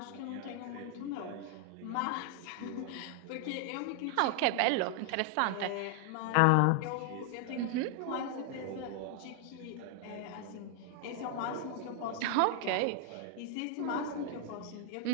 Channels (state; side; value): different; both; correlation 0.00